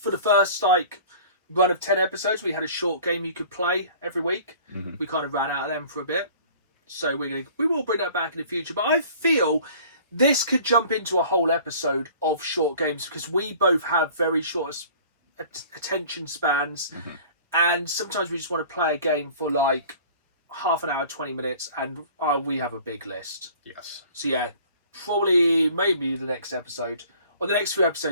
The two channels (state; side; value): inverted; both; correlation -0.48